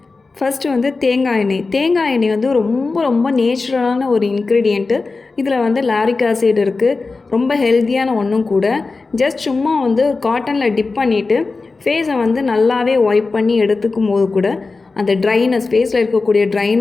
ஃபஸ்ட்டு வந்து தேங்காய் எண்ணெய். தேங்காய் எண்ணெய் வந்து ரொம்ப ரொம்ப நேச்சுரலான ஒரு இன்க்ரீடியண்ட்டு. இதில் வந்து லாரிக் ஆசிட் இருக்குது. ரொம்ப ஹெல்த்தியான ஒன்றும் கூட. ஜஸ்ட் சும்மா வந்து காட்டனில் டிப் பண்ணிவிட்டு ஃபேஸை வந்து நல்லாவே ஒய்ப் பண்ணி எடுத்துக்கும் போது கூட அந்த ட்ரைனஸ், ஃபேஸில் இருக்கக்கூடிய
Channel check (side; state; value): right; quieter; 3.9 dB